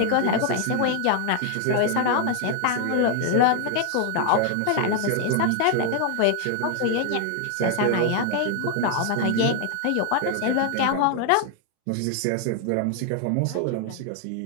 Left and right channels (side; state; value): both; different; correlation 0.00